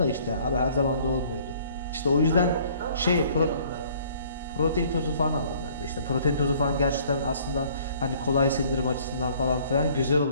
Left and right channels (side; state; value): both; inverted; correlation -0.57